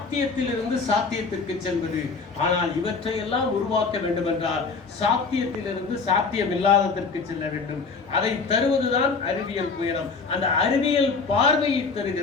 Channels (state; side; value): quieter; right; 4.6 dB